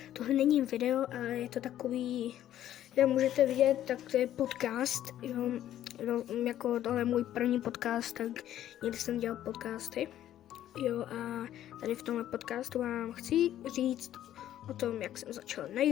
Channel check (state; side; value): quieter; right; 12.0 dB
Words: Tohle není video, ale je to takový, jak můžete vidět, tak to je podcast. Jo, jako tohle je můj první podcast, tak někdy jsem dělal podcasty. Jo, a tady v tomhle podcastu vám chci říct o tom, jak jsem začal na